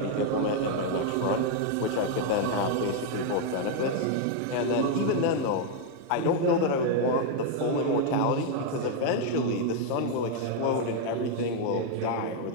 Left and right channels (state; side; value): different; both; correlation 0.00